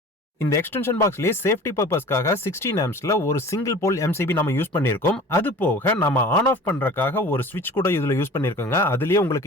இந்த எக்ஸ்டென்ஷன் பாக்ஸ்லயே சேஃப்டி பர்பஸ்க்காக 16 ampsல ஒரு சிங்கிள் போல் MCB நம்ம யூஸ் பண்ணிருக்கோம். அது போக நம்ம ஆன் ஆஃப் பண்றதுக்காக ஒரு ஸ்விட்ச் கூட இதுல யூஸ் பண்ணிருக்கோங்க. அதுலயே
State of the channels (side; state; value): both; normal; correlation 0.42